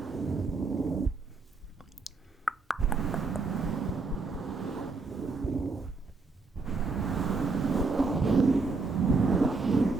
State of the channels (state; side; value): quieter; left; 4.0 dB